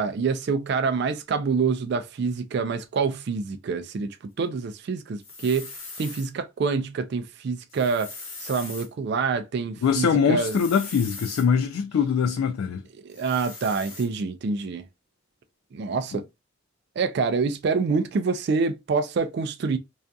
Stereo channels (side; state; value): both; normal; correlation 0.19